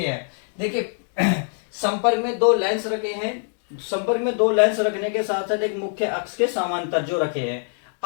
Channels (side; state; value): right; silent; 63 dB below the other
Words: हैं। देखिए संपर्क में दो लेंस रखे हैं। संपर्क में दो लेंस रखने के साथ साथ एक मुख्य अक्ष के समांतर जो रखे हैं।